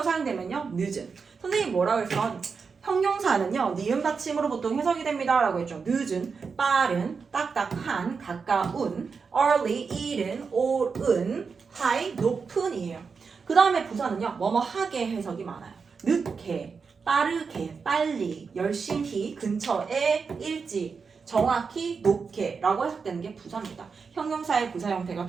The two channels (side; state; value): left; quieter; 5.3 dB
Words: 사용되면요. 늦은. 선생님이 뭐라고 했어? 형용사는요. 니은 받침으로 보통 해석이 됩니다. 라고 했죠. 늦은, 빠른, 딱딱한, 가까운, early, 이른, 오른, high, 높은이에요. 그 다음에 부사는요. 뭐뭐하게 해석이 많아요. 늦게, 빠르게, 빨리, 열심히, 근처에, 일찍, 정확히, 높게 라고 해석되는 게 부사입니다. 형용사의 부사 형태가